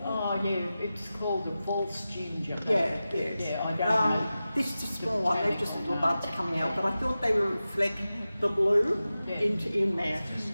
Oh yeah, it's called a false ginger. Yeah. Yeah, I don't know. This is a small one, they're just little buds coming out, but I thought they would reflect the blue in there.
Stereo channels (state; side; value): inverted; both; correlation -0.94